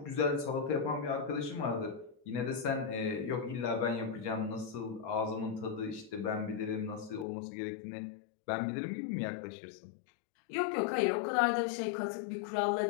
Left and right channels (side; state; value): right; drops out; at 7.2 s